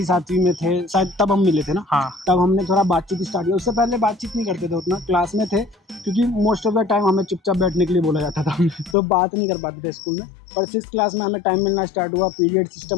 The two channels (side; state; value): right; drops out; at 9.0 s